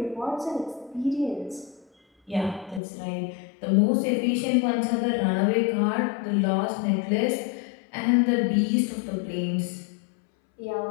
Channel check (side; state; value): right; drops out; at 2.8 s